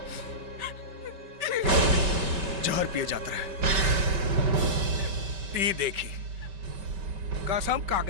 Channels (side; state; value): left; late; 5.2 ms